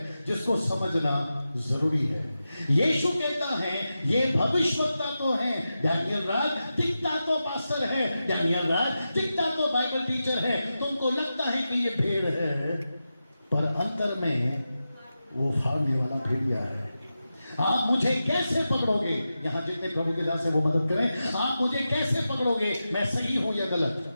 जिसको समझना जरूरी है। यीशु कहता है ये भविष्यवक्ता तो हैं, डैनियल राज दिखता तो पास्टर है, डैनियल राज दिखता तो बाइबल टीचर है, तुमको लगता है कि ये भेड़ है, पर अंतर में वो फाड़ने वाला भेड़िया है। आप मुझे कैसे पकड़ोगे? यहां जितने प्रभु के दास है वो मदद करें। आप मुझे कैसे पकड़ोगे मैं सही हूं या गलत?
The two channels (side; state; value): both; inverted; correlation -0.91